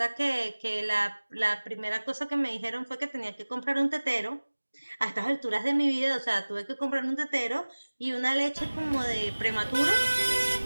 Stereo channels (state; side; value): inverted; both; correlation -1.00